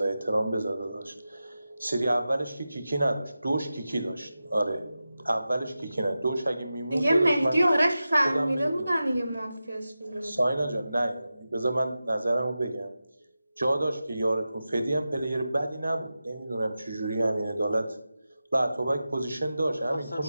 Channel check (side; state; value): both; inverted; correlation -0.93